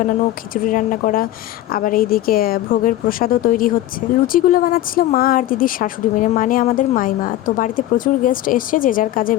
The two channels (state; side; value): quieter; right; 14.3 dB